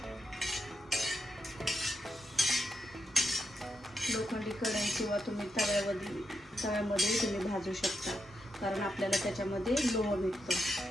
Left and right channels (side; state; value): both; normal; correlation 0.84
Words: लोखंडी कढई किंवा तुम्ही तव्यामध्ये तुम्ही भाजू शकता, कारण आपल्याला त्याच्यामध्ये लोह भेटतं।